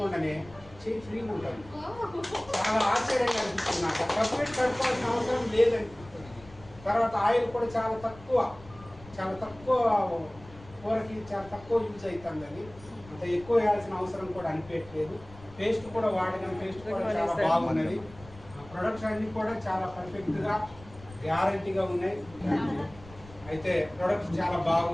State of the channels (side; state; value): left; noise; rumble, 20 dB below the sound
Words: చేయి ఫ్రీగా ఉంటుంది. చాలా ఆశ్చర్యంగా అనిపిస్తుంది నాకు. సబ్బు పెట్టి కడుక్కోవాల్సిన అవసరం లేదనిపిస్తుంది. తర్వాత ఆయిల్ కూడా చాలా తక్కువ కూరకి చాలా తక్కువ యూజ్ అవుతుంది. అది అంత ఎక్కువ వేయాల్సిన అవసరం కూడా అనిపించట్లేదు. పేస్ట్ కూడా వాడిన పేస్ట్ కూడా చాలా బాగున్నది. ప్రొడక్ట్స్ అన్నీ కూడా చాలా పర్ఫెక్ట్గా గ్యారంటీగా ఉన్నాయి. అయితే ప్రొడక్ట్స్ చాలా